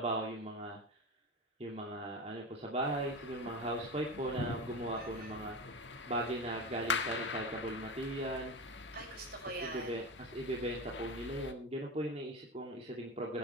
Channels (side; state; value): both; normal; correlation 0.23